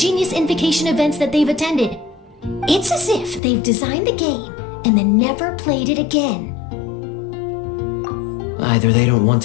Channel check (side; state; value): right; drops out; at 3.4 s